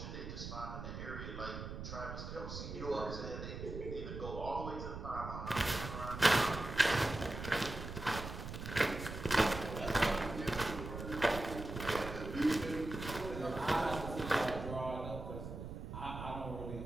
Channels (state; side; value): noise; right; rumble, 8 dB below the sound